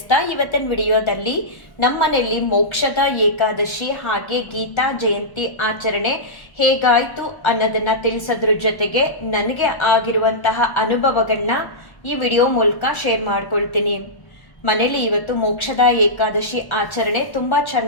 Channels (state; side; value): late; right; 1.1 ms